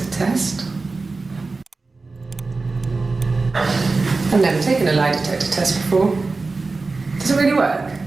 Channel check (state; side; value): quieter; left; 3.8 dB